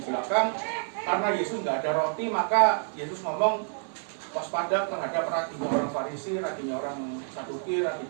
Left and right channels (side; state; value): left; silent; 59 dB below the other